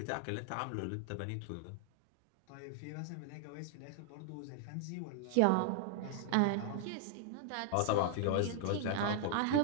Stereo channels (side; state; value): both; different; correlation 0.00